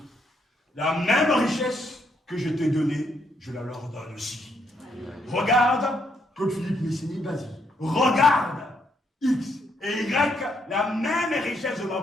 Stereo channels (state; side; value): normal; both; correlation 0.74